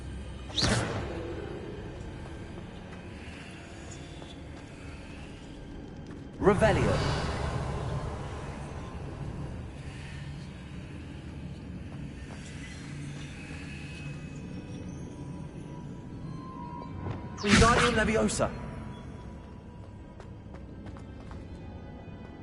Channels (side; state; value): both; identical; correlation 1.00